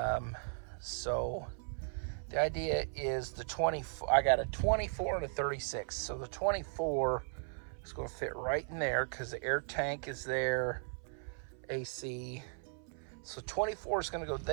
So the idea is the 24, I got a 24 and a 36. So the 24 is going to fit right in there because the air tank is there, AC. So 24 is going to go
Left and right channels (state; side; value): silent; left; 53 dB below the other